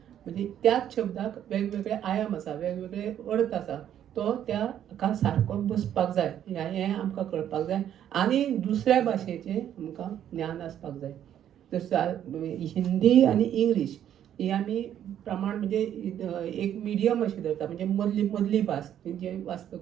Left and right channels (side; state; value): left; quieter; 10.4 dB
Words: म्हणजे त्याच शब्दाक वेगवेगळे आयाम आसा, वेगवेगळे अर्थ आसा, तो त्या हाका सारको बसपाक जाय, हें आमकां कळपाक जाय. आनी दुसऱ्या भाशेचें आमकां ज्ञान आसपाक जाय. हिंदी आनी इंग्लीश ही आमी प्रमाण म्हणजे एक मिडियम अशी धरता, म्हणजे मदली भास जे